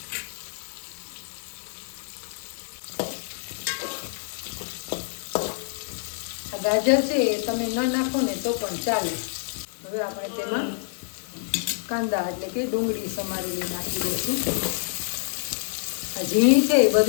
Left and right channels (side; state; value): right; silent; digital silence